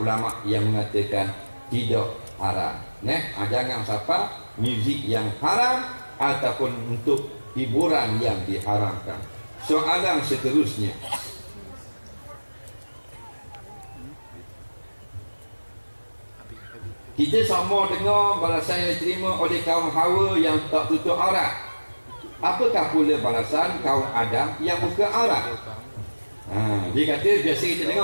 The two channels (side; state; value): both; inverted; correlation -1.00